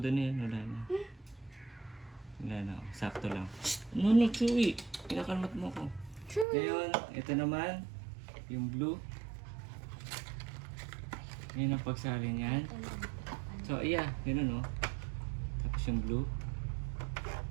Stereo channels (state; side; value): drops out; left; at 6.5 s